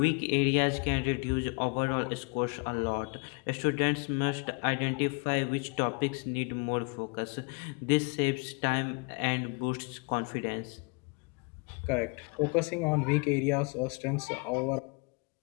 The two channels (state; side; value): quieter; right; 33.1 dB